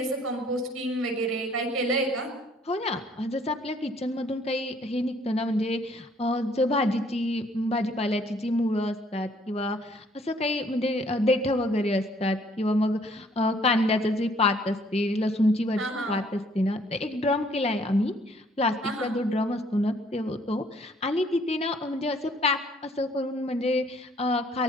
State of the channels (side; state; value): both; normal; correlation 0.62